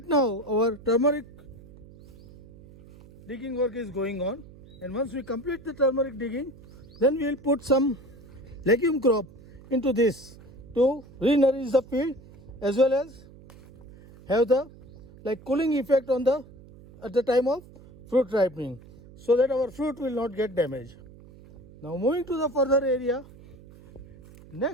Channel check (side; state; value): right; noise; hum, 21 dB below the sound